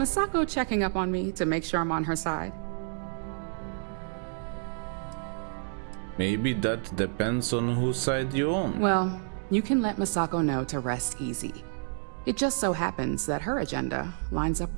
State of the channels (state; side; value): silent; left; digital silence